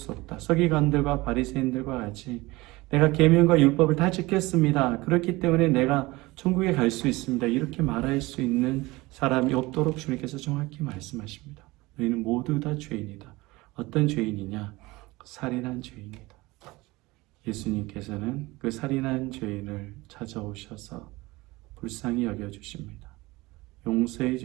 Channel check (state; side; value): quieter; left; 21.3 dB